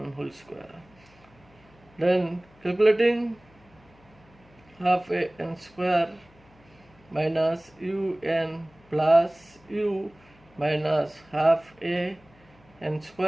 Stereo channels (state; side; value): noise; left; hum, 28 dB below the sound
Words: whole square. Then calculating half a n square minus un plus u minus half a n